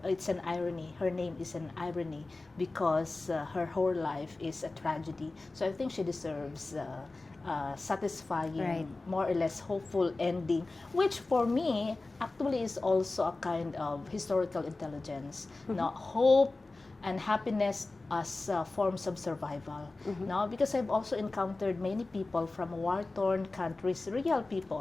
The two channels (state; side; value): quieter; right; 3.3 dB